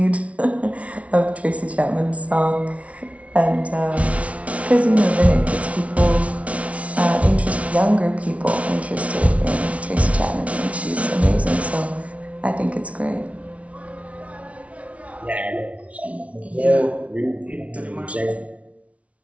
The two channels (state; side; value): late; left; 0.064 ms